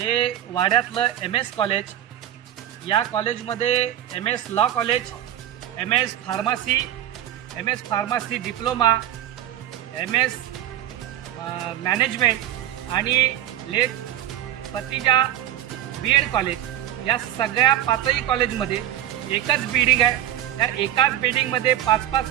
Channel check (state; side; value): quieter; left; 12.1 dB